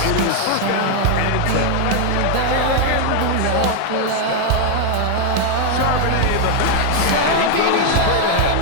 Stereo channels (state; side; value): different; both; correlation 0.00